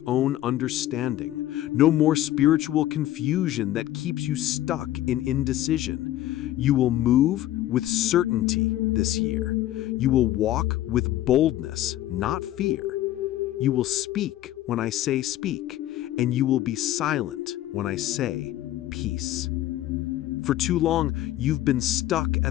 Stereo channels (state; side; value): quieter; right; 14.0 dB